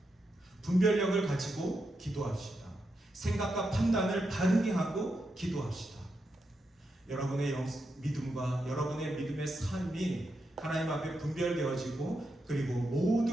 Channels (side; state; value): both; normal; correlation 0.85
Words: 분별력을 가지고 기도합시다. 생각과 판단을 바르게 하고 기도합시다. 여러분의 믿음과 여러분의 믿음의 삶이 하나님 앞에 분별되어지고 그리고